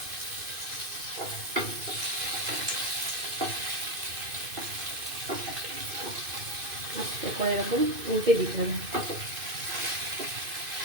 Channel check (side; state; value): left; late; 2.5 ms